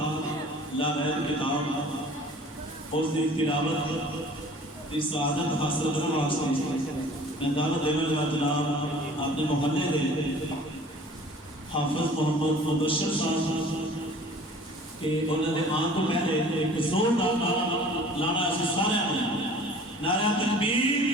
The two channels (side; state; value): both; normal; correlation 0.48